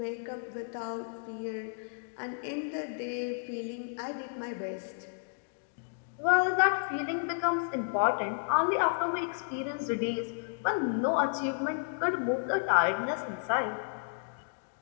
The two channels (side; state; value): right; silent; digital silence